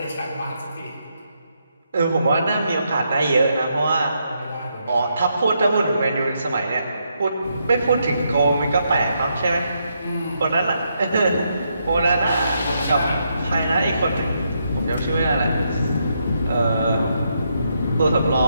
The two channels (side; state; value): both; inverted; correlation -0.79